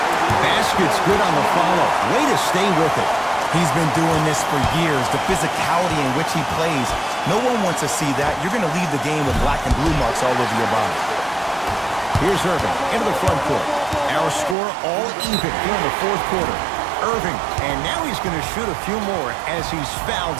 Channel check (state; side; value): drops out; left; at 14.6 s